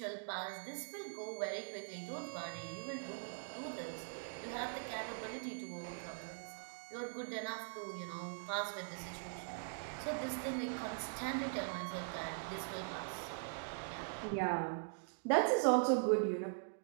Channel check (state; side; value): silent; left; digital silence